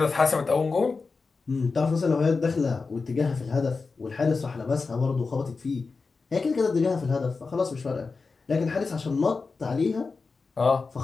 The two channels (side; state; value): right; quieter; 4.4 dB